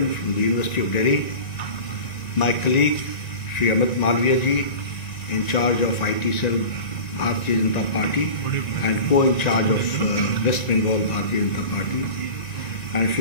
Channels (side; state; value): right; late; 1.9 ms